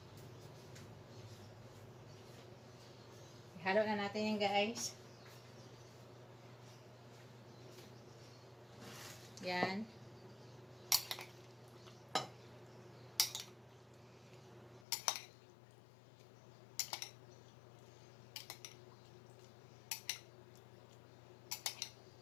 Ihalo na natin yan, guys. Yan.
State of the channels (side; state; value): right; drops out; at 14.9 s